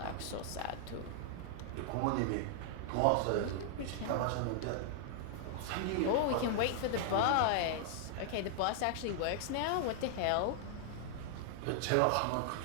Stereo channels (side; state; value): both; different; correlation -0.01